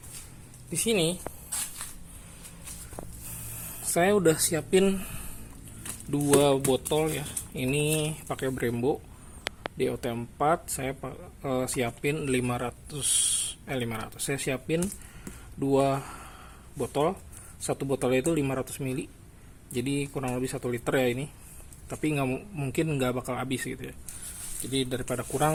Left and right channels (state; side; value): identical; both; correlation 1.00